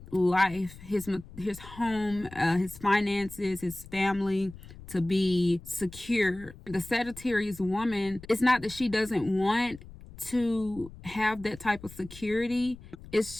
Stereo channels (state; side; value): noise; left; rumble, 18 dB below the sound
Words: life, his home, his finances, his family to be secure. The Sagittarius woman, it's not that she doesn't want to have that type of security. It's